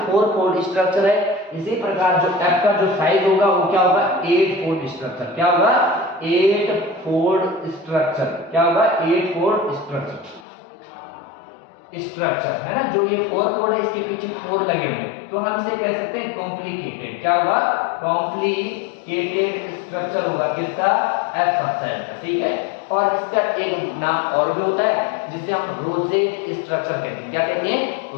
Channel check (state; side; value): drops out; right; at 10.5 s